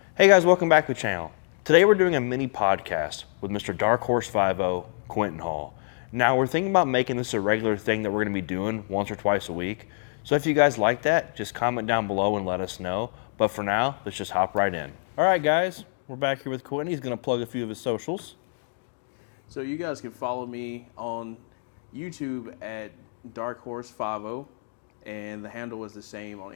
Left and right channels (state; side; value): silent; right; 61 dB below the other